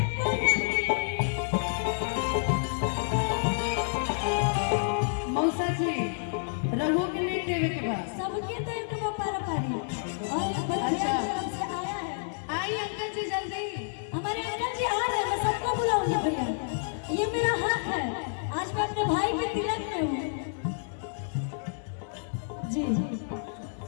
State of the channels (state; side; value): silent; right; 57 dB below the other